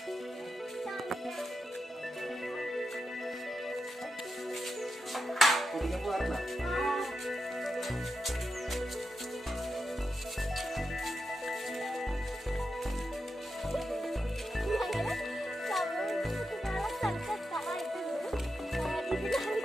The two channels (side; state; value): both; normal; correlation 0.88